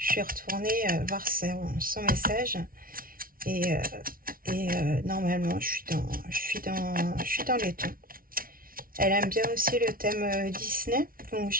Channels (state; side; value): late; left; 0.42 ms